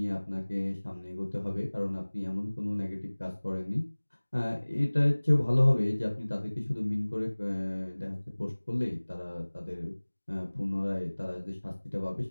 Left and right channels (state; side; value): inverted; both; correlation -1.00